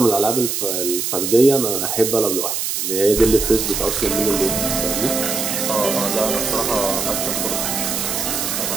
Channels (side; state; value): right; noise; hiss, 1 dB below the sound